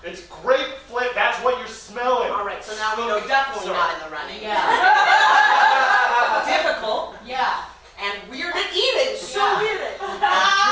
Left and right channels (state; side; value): identical; both; correlation 1.00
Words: It's grape flip, that's what you're smelling. All right, so now we know definitely Sorry. not in the running. Yeah. Difficult Yeah. and weird at eating. So Yeah. weird at